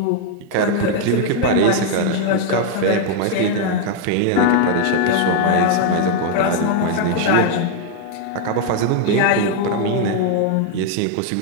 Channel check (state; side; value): different; both; correlation 0.00